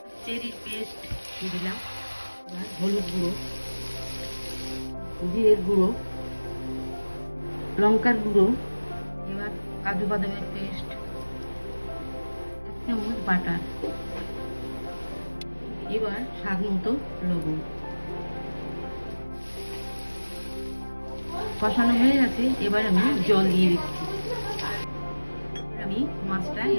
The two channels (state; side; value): inverted; both; correlation -1.00